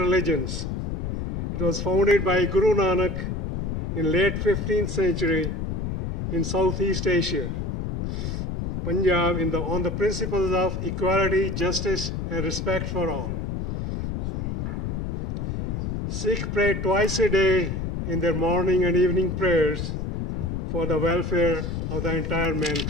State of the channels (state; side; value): noise; left; rumble, 3 dB below the sound